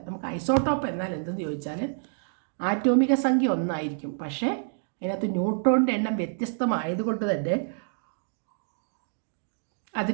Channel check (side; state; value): left; silent; digital silence